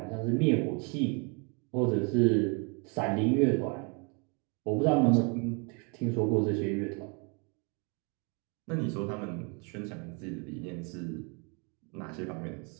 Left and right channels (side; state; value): left; quieter; 33.9 dB